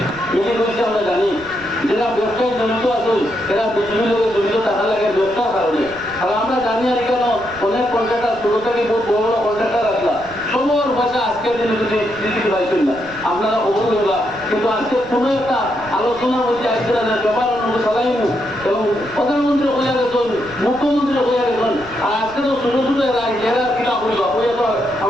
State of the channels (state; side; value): noise; right; rumble, 20 dB below the sound